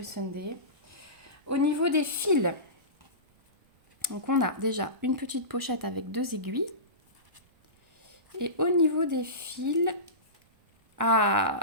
Sunday. Au niveau des fils, donc on a déjà une petite pochette avec 2 aiguilles. Et au niveau des fils,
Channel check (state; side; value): late; left; 1.3 ms